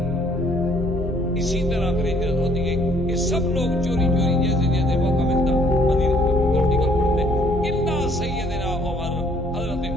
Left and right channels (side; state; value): both; normal; correlation 0.63